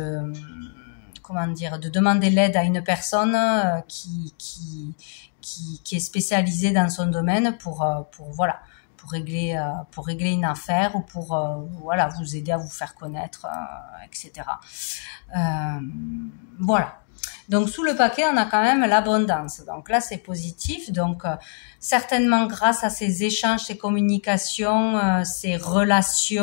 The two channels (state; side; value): silent; right; 63 dB below the other